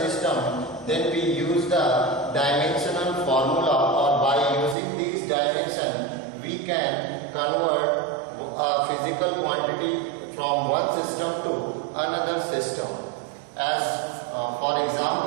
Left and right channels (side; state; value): left; drops out; at 4.8 s